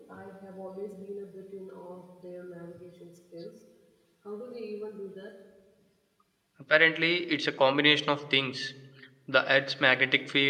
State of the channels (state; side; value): identical; both; correlation 1.00